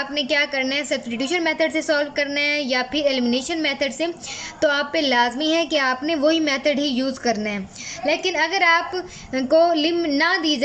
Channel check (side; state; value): both; identical; correlation 1.00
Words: क्या करना है, सब्स्टिट्यूशन मेथड से सॉल्व करना है या फिर एलिमिनेशन मेथड से, तो आप पे लाजमी है कि आपने वही मेथड ही यूज़ करना है। लेकिन अगर आप को लिम ना दी